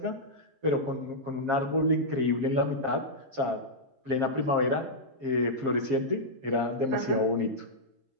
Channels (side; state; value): left; late; 7.4 ms